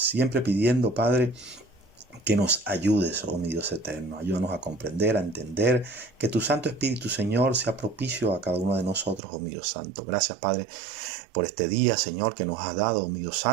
pidiendo, Padre, que nos ayudes, oh mi Dios eterno. Ayúdanos a comprender, a entender, que tu Santo Espíritu, Señor, sea propicio a cada uno de nosotros, oh mi Dios Santo. Gracias, Padre, por este día, Señor, que nos has dado, oh mi Dios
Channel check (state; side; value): drops out; left; at 9.2 s